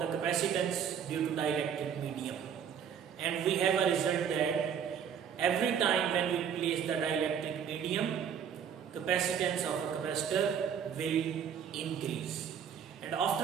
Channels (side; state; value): left; quieter; 7.9 dB